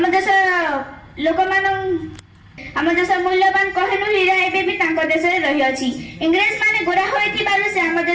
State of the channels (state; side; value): identical; both; correlation 1.00